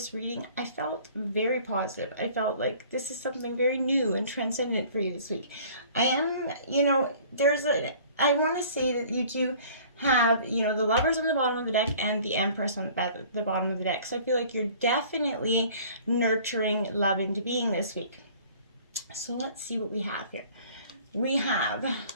reading, I felt very positive. I felt like this is something very new and transcendent for you this week. I want to say that you do have, the Lovers on the bottom of the deck and the Empress on the bottom of the deck. So I feel like you're definitely nurturing love into being this week. So let's see what we have here. We have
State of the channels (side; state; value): both; inverted; correlation -0.51